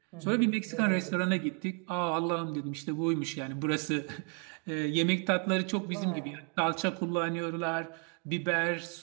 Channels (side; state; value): left; quieter; 38.4 dB